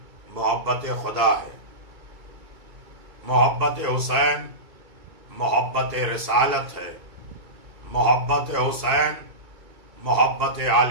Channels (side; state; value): left; late; 2.2 ms